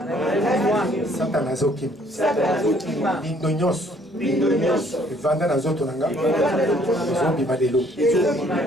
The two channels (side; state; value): both; normal; correlation 0.62